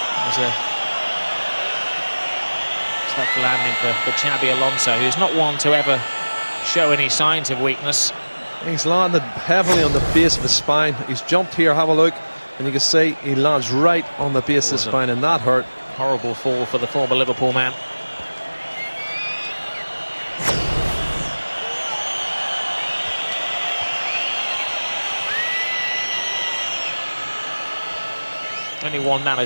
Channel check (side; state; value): both; inverted; correlation -1.00